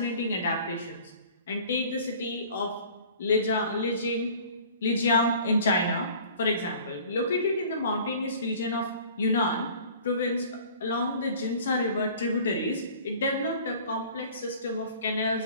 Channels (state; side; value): inverted; both; correlation -0.48